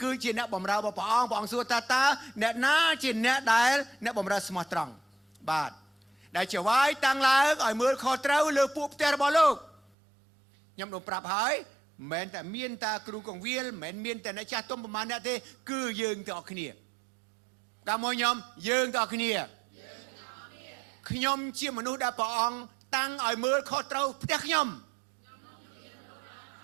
គឺជាអ្នកបម្រើរបស់ព្រះអង្គសួរតើអ្នកណាជាអ្នកដែលអ្នកបម្រើស្មោះត្រង់បាទដែលចវាយតាំងឡើងឲ្យមើលខុសត្រូវលើពួកផ្ទះរបស់លោកខ្ញុំនឹងប្រាប់ហើយមិនមែនតែមានតាគ្រូកងវិលមិនមែនមានតែអ្នកចាស់ទុំប្រមាណអ្នកទេគឺយើងទាំងអស់គ្នាតាមមកខ្ញុំយើងទាំងអស់គ្នាខ្ញុំជាមនុស្សដែលព្រះអង្គតាំងឲ្យមើលខុសត្រូវផ្ទះខ្ញុំ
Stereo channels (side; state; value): left; drops out; at 9.8 s